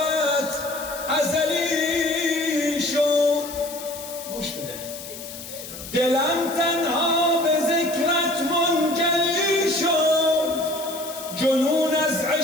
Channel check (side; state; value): left; noise; hiss, 12 dB below the sound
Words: ازلی شد. گوش بده. دلم تنها بذکرت منجلی شد، جنون از